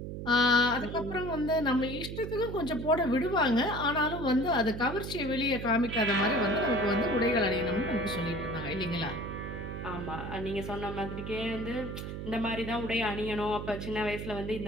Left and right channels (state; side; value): noise; right; hum, 7 dB below the sound